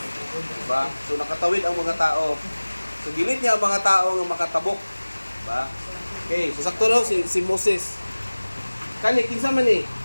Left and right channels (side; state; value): both; inverted; correlation -1.00